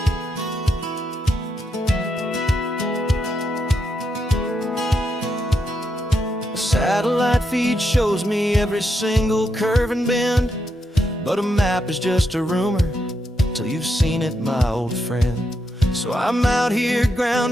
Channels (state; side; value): normal; both; correlation 0.82